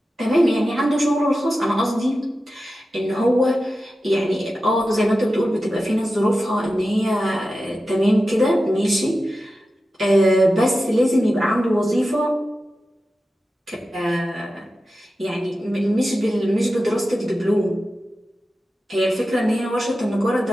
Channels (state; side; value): normal; both; correlation 0.93